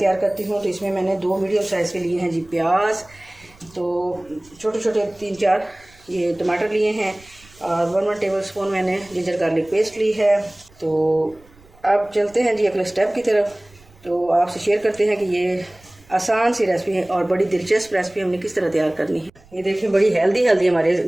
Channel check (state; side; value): noise; right; rumble, 27 dB below the sound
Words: करती हूँ। तो इसमें मैंने 2 मीडियम साइज़ के लिए हैं जी प्याज, तो छोटे छोटे 3-4 ये टमाटर लिए हैं और 1 टेबल स्पून मैंने जिंजर गार्लिक पेस्ट ली है। तो अब चलते हैं जी अगले स्टेप की तरफ। तो आपसे शेयर करते हैं कि ये आसान सी रेसिपी है और बड़ी दिलचस्प रेसिपी हमने किस तरह तैयार करनी है। ये देखिए बड़ी हेल्दी हमारे